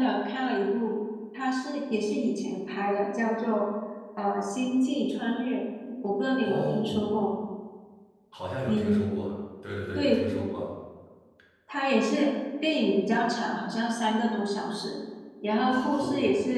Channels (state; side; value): identical; both; correlation 1.00